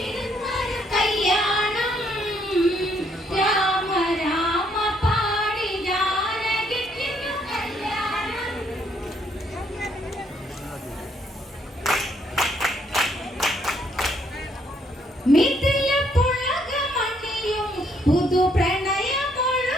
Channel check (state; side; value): normal; both; correlation 0.70